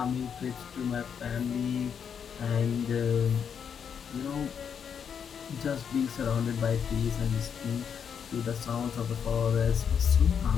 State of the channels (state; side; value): quieter; right; 7.4 dB